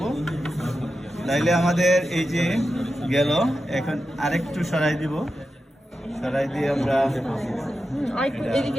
তাইলে আমাদের এই যে গেল, এখন আরেকটু সরাই দিব, সরাই দিয়ে আমরা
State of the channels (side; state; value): both; normal; correlation 0.90